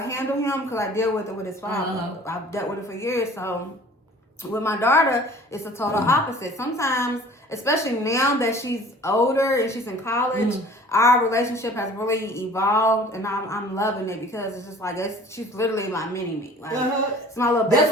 to handle him because I deal with it with his father. I've dealt with it for years. So with my daughter, it's a total opposite. Sometimes, especially now that she's older and she's in college, our relationship has really evolved, and I'm loving it because it's just like she's literally my mini me. Like it's my little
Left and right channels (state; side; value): normal; both; correlation 0.48